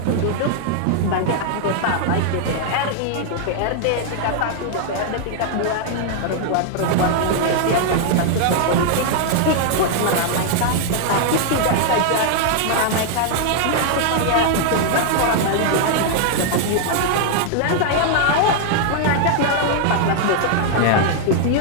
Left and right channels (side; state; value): both; different; correlation 0.00